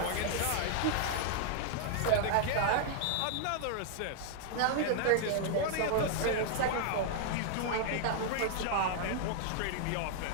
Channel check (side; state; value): both; different; correlation -0.01